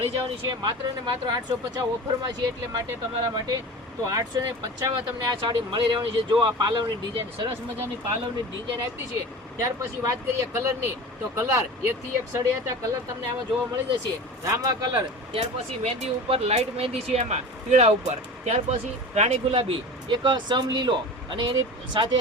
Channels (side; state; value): both; normal; correlation 0.34